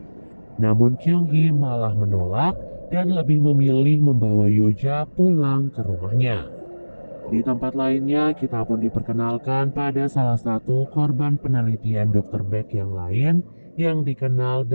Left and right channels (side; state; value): both; inverted; correlation -1.00